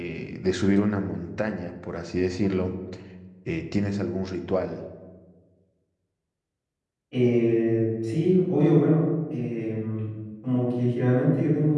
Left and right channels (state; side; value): identical; both; correlation 1.00